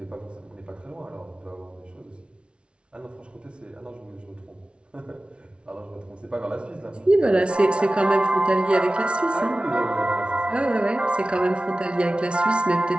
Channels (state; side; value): late; left; 0.058 ms